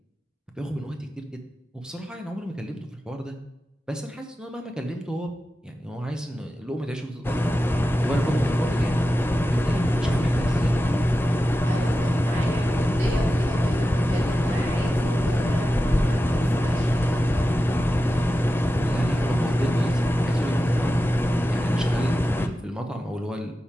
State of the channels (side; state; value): both; normal; correlation 0.92